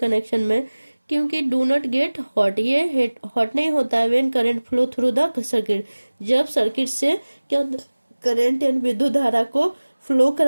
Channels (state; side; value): inverted; both; correlation -1.00